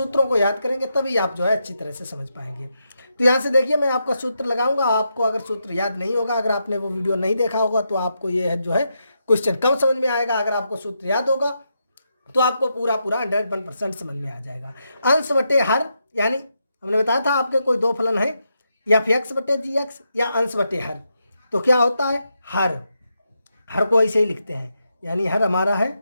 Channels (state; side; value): inverted; both; correlation -0.83